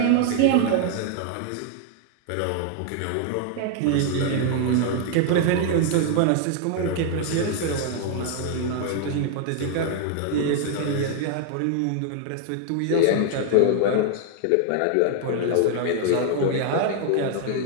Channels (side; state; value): both; different; correlation 0.00